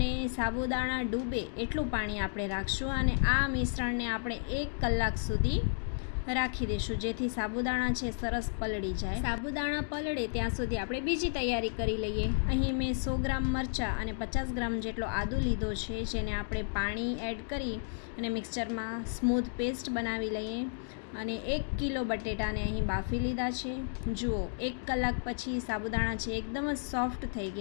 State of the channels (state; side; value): silent; right; digital silence